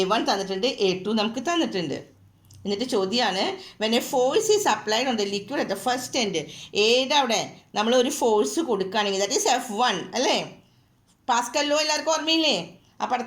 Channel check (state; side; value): identical; both; correlation 1.00